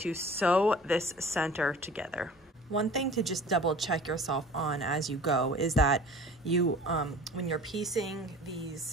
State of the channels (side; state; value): both; normal; correlation 0.44